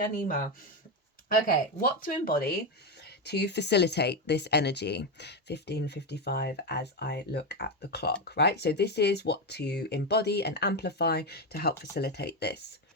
Okay, what to embody to facilitate this energy. 15:55 as I look at the clock, right? So this is what to embody and amplify to help facilitate this.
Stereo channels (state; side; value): normal; both; correlation 0.11